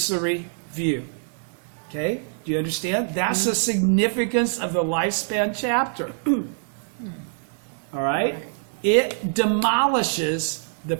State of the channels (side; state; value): left; silent; digital silence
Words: view. Okay? Do you understand? That's the significance of the lifespan chapter. All right? It demolishes the